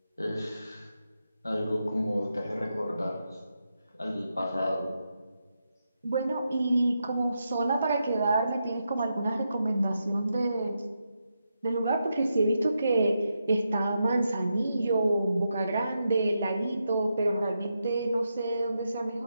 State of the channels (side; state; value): both; inverted; correlation -0.85